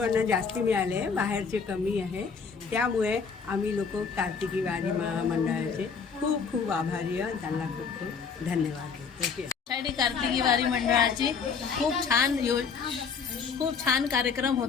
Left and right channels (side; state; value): right; quieter; 5.7 dB